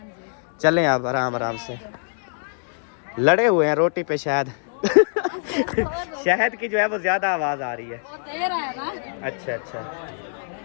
चलें आप आराम आराम से, लड़े हुए हैं रोटी पे शायद शहद की जो है वो ज्यादा आवाज आ रही है। वो दे रहा है ना। अच्छा अच्छा,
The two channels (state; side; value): silent; right; digital silence